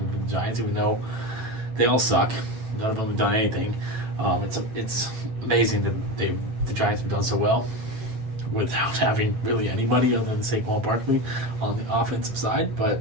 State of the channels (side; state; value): left; late; 8.2 ms